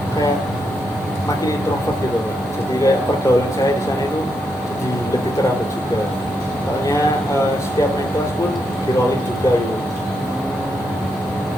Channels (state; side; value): normal; both; correlation 0.81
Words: kayak makin introvert gitu Pak. Jadi kayak pergaulan saya di sana itu jadi lebih terhambat juga, soalnya setiap naik kelas pun di rolling juga gitu.